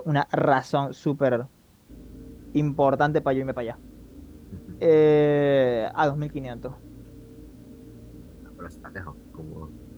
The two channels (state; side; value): identical; both; correlation 1.00